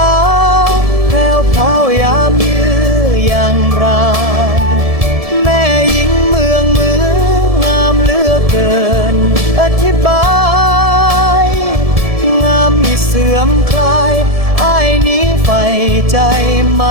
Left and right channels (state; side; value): late; left; 1.7 ms